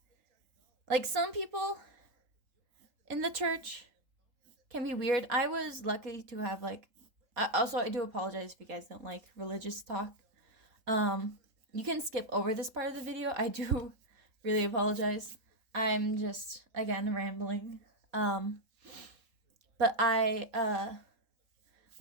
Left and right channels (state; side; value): late; left; 3.8 ms